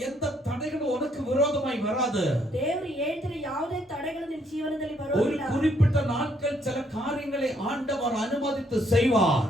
எந்த தடைகளும் உனக்கு விரோதமாய் வராது. ದೇವರು ಹೇಳ್ತಿರೋ ಯಾವುದೇ ತಡೆಗಳು ನಿಮ್ಮ ಜೀವನದಲ್ಲಿ ಬರೋದಿಲ್ಲ. ஒரு குறிப்பிட்ட நாட்கள் சில காரியங்களை ஆண்டவர் அனுமதித்து செய்வார்.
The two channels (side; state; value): both; normal; correlation 0.70